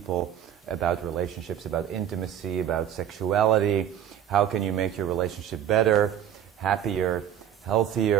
about relationships, about intimacy, about sexuality. How can you make your relationship better, happier,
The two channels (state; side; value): quieter; left; 10.0 dB